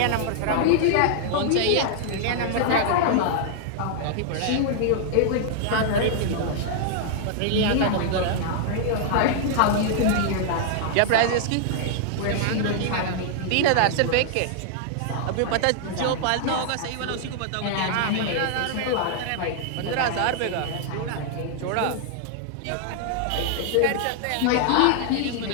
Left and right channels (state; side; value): different; both; correlation -0.01